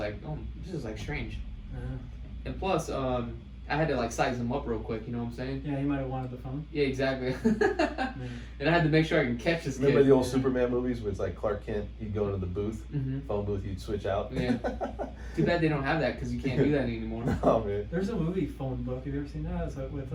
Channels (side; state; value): both; identical; correlation 1.00